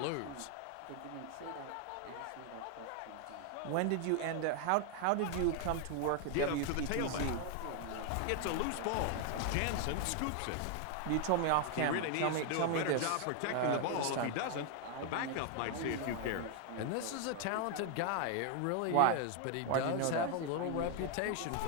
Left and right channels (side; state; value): both; different; correlation 0.00